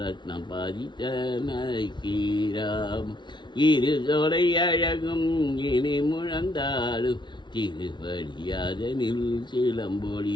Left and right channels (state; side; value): late; right; 0.22 ms